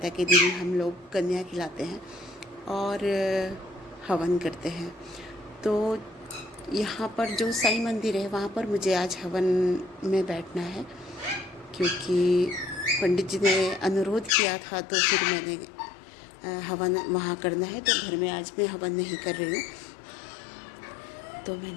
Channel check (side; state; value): right; drops out; at 14.3 s